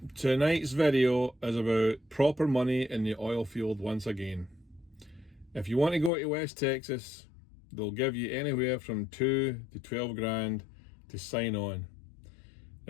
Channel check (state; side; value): drops out; right; at 6.1 s